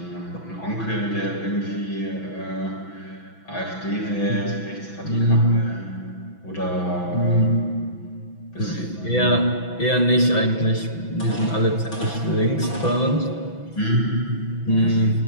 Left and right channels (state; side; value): late; right; 6.0 ms